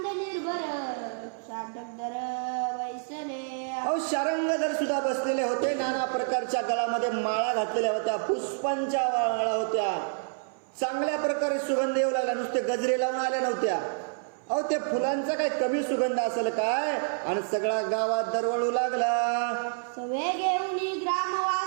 निर्भर शाटकदर वैसले. अहो शारंगधर सुद्धा बसलेले होते. नाना प्रकारच्या गळामध्ये माळा घातलेल्या होत्या. पुष्पांच्या माळा होत्या. चांगल्या प्रकारे सुगंध येऊ लागला. नुसते गजरे लावून आल्या नव्हत्या. अहो ते फुलांचा काय कमी सुगंध असेल काय? आणि सगळ्या गावात दरवळू लागला. सवे घेऊनी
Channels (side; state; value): left; silent; 58 dB below the other